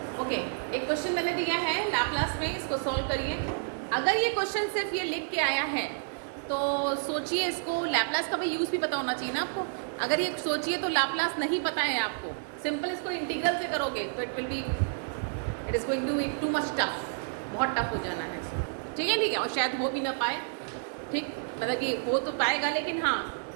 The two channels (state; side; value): silent; left; digital silence